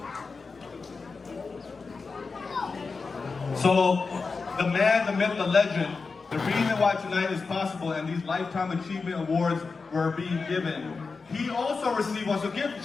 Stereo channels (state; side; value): quieter; right; 4.5 dB